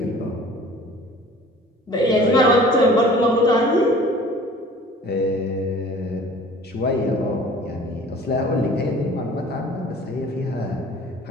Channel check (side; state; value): both; normal; correlation 0.47